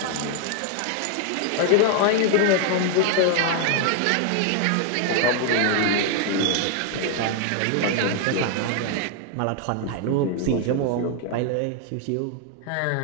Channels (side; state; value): both; different; correlation 0.00